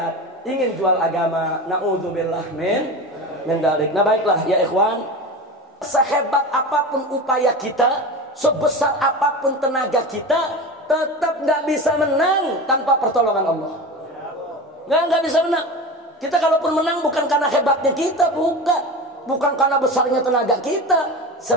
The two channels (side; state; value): both; normal; correlation 0.28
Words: ingin jual agama, naudzubillah min dzalik. Nah baiklah ya ikhwan, sehebat apapun upaya kita, sebesar apapun tenaga kita, tetap nggak bisa menang tanpa pertolongan Allah. Nggak bisa menang. Kita kalaupun menang bukan karena hebatnya kita, bukan karena besarnya tenaga kita,